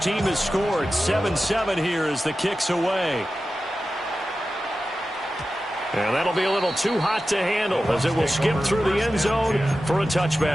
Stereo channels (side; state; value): both; normal; correlation 0.93